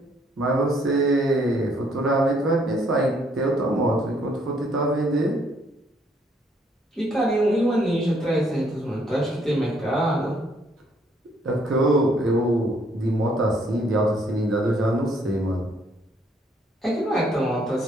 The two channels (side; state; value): both; normal; correlation 0.67